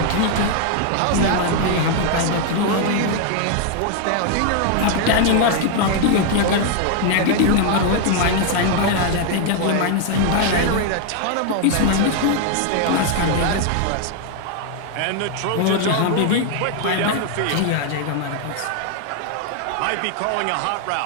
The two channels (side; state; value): both; different; correlation 0.00